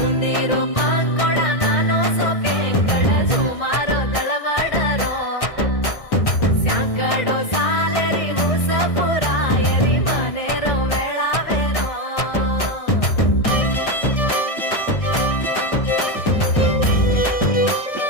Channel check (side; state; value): right; late; 1.6 ms